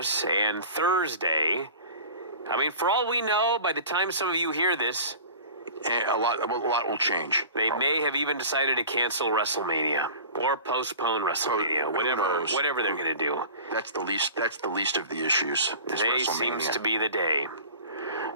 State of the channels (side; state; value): both; inverted; correlation -0.39